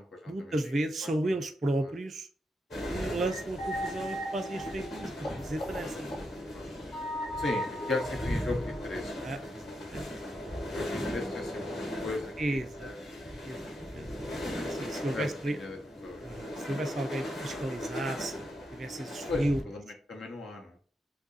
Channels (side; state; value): both; normal; correlation 0.83